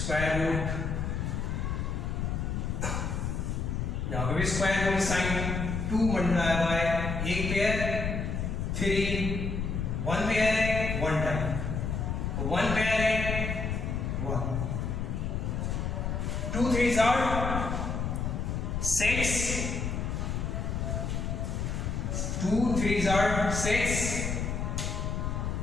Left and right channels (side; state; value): left; noise; rumble, 1 dB below the sound